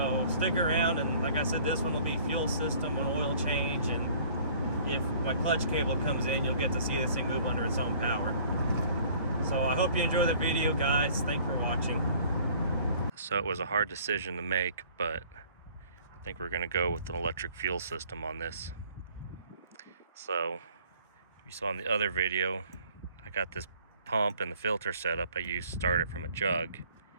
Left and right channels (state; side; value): inverted; both; correlation -0.54